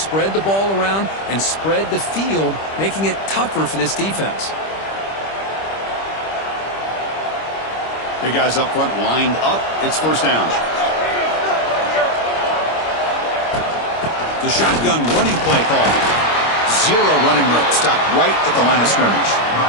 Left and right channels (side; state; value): right; late; 25 ms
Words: the ball around and spread the field, making it tougher for this defense. Big guys up front lined up. It's first down. The shotgun running play call. Zero running room. Stopped right at the line of scrimmage.